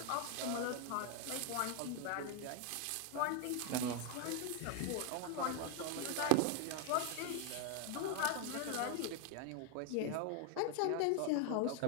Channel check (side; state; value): both; different; correlation 0.01